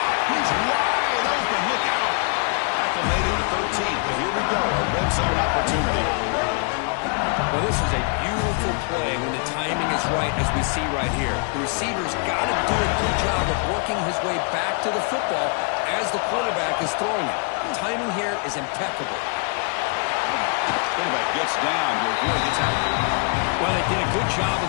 He's wide open. Look out. Tackle made it to 13, but here we go. A red zone opportunity. Well, this is a beautiful play when the timing is right, as we see right here. The receiver's got to do a good job of working his way back to the football as the quarterback is throwing it. The timing here is impeccable. Quarterback gets down to avoid the tackle. Well, they did a good job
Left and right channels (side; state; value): right; quieter; 37.4 dB